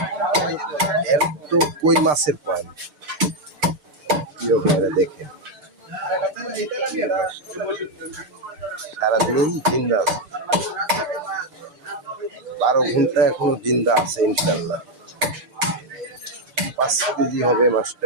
এর তো কই মাছের পয়েন্ট, প্রিয় ভাইরা দেখেন, সারাদিন জিন্দা আছে, 12 ঘন্টা এখনো জিন্দা আছে ইনশাল্লাহ। 5 কেজি হবে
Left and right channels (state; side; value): late; left; 6.7 ms